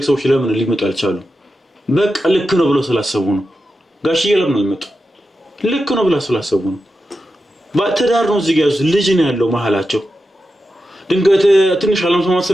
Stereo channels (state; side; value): normal; both; correlation 0.90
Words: ሰዎች ለምን ሊመጡ አልቻሉም? በቃ ልክ ነው ብለው ስላሰቡ ነው። ጋሽዬ ለምን አልመጡ? ልክ ነው ብለው ስላሰቡ ነው። ባትዳር ነው እዚህ ጋር ያዙት ልጅ ነው ያለው መሀላቸው። ድንገት ትንሽ አለመስማማት